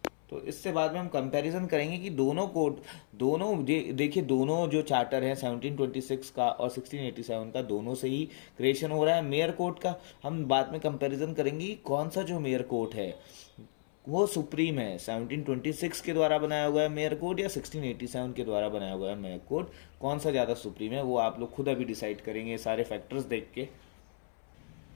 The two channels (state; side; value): silent; right; 56 dB below the other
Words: तो इससे बाद में हम कंपैरिजन करेंगे कि देखिए दोनों जो चार्टर हैं 1726 का और 1687 का, दोनों से ही क्रिएशन हो रहा है मेयर कोर्ट का। हम बाद में कंपैरिजन करेंगे कि कौन सा जो मेयर कोर्ट है वो सुप्रीम है, 1726 के द्वारा बनाया हुआ है मेयर कोड या 1687 के द्वारा बनाया हुआ है मेयर कोड, कौन सा ज़्यादा सुप्रीम है, वो आप लोग खुद अभी डिसाइड करेंगे सारे फैक्टर्स देख के।